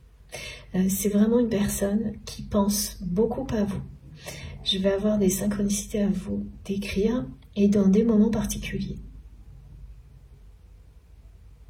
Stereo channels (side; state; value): both; identical; correlation 1.00